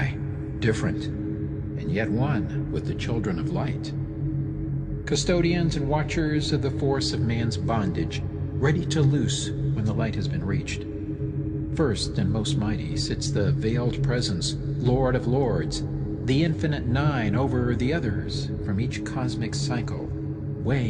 different, and yet one with the children of light. Custodians and watchers of the force of man's bondage, ready to loose when the light has been reached. First and most mighty sits the veiled presence, Lord of Lords, the infinite 9 over the others from each cosmic cycle,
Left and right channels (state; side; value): identical; both; correlation 1.00